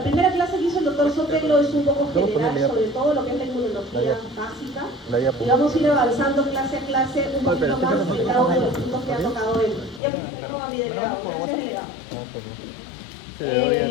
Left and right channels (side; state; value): right; drops out; at 10.0 s